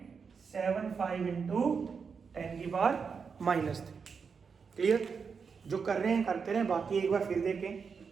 इंटू 10⁻³ क्लियर। जो कर रहे हैं करते रहे, बाकी एक बार फिर देखें,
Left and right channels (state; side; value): quieter; left; 5.8 dB